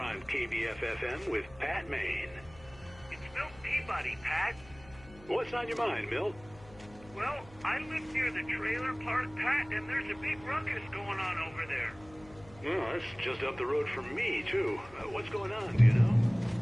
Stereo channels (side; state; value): left; noise; hum, 22 dB below the sound